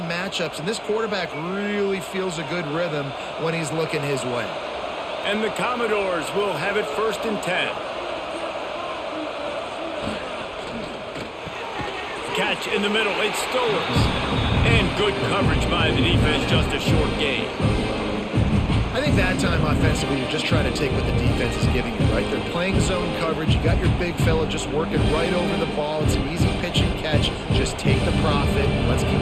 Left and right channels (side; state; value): both; identical; correlation 1.00